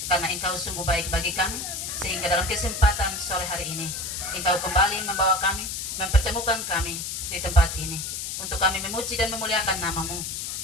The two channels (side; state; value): left; noise; hiss, 4 dB below the sound